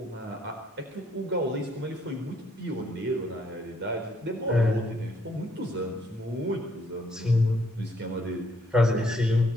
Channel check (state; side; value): normal; both; correlation 0.68